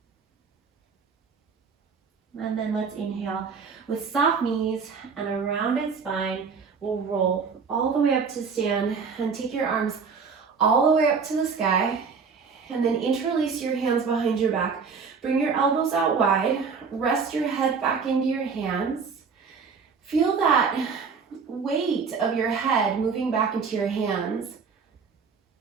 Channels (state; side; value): quieter; left; 5.5 dB